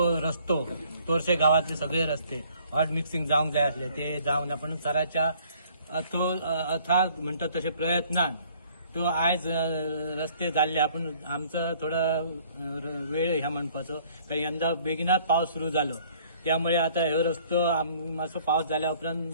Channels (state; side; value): inverted; both; correlation -0.58